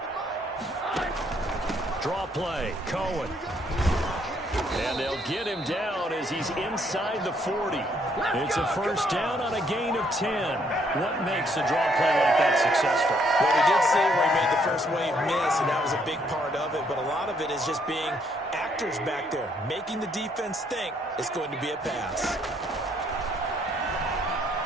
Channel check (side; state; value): both; normal; correlation 0.69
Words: Draw play, Cohen. And they'll get him down as he's inside the 40. It's a 1st down on a gain of 10. What makes a draw play like that successful? Well, we did see where he made the first wave miss, and that was a big part of it. But a lot of it is just being actors back there, making the defense think it's going to be a pass.